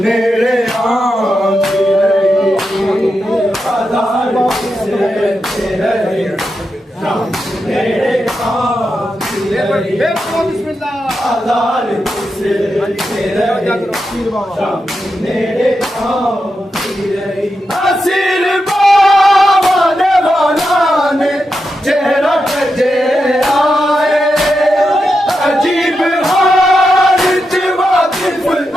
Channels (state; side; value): normal; both; correlation 0.87